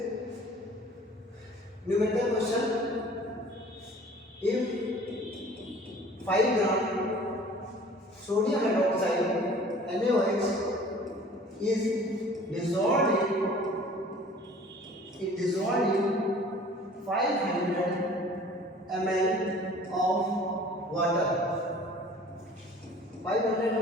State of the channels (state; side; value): normal; both; correlation 0.49